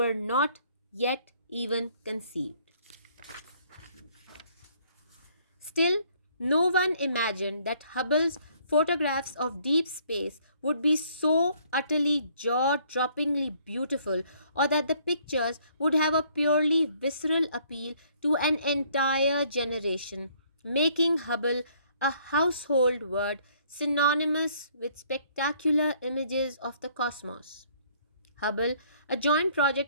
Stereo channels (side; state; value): both; inverted; correlation -0.63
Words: not yet even conceived. Still, no one imagined that Hubble's photographs of deep space would be so utterly jaw droppingly beautiful, or that the pictures would have a purely visceral appeal to an entire generation, making Hubble a household word synonymous with spectacular images of the cosmos. Hubble, a joint